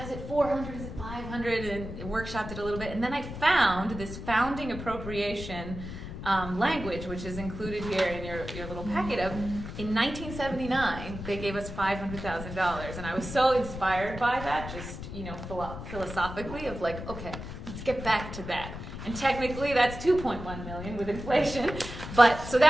is it 400? Is it 500? And workshopped it a little bit. And then I found this founding appropriation language, which is included here in your little packet of, in 1979, they gave us $500,000. And I was so inspired by that, just, you know, philosophically of like, okay, let's get back to that. And technically that's 2.1 million with inflation. But so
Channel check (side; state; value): left; noise; rumble, 9 dB below the sound